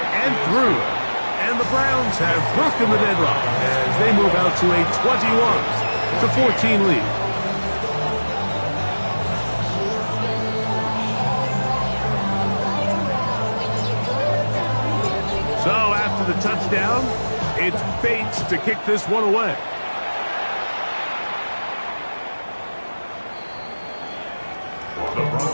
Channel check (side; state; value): both; inverted; correlation -1.00